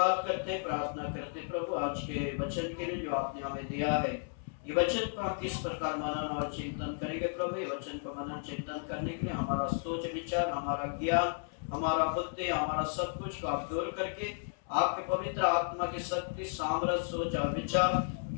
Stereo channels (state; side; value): silent; right; 55 dB below the other